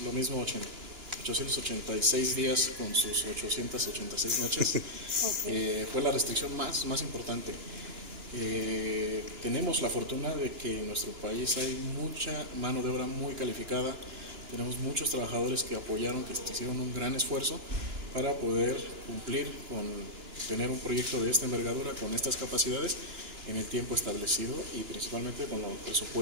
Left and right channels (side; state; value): left; late; 2.9 ms